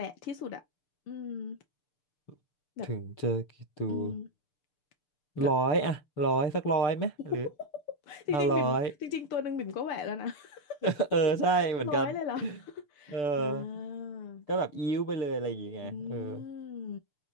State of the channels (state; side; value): late; right; 6.8 ms